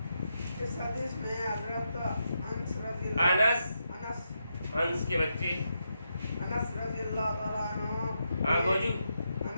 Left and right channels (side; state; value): both; inverted; correlation -0.84